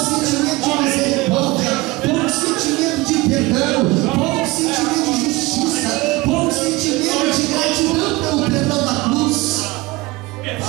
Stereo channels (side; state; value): left; quieter; 21.6 dB